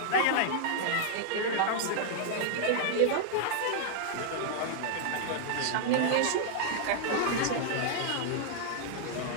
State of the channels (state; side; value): different; both; correlation -0.01